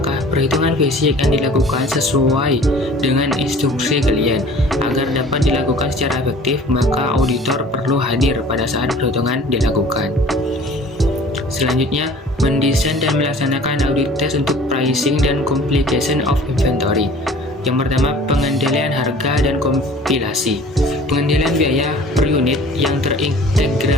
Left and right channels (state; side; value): normal; both; correlation 0.47